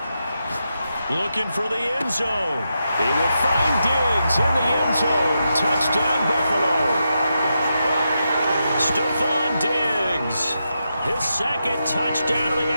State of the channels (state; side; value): inverted; both; correlation -0.86